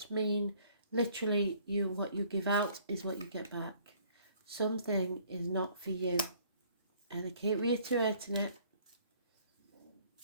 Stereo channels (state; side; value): inverted; both; correlation -0.58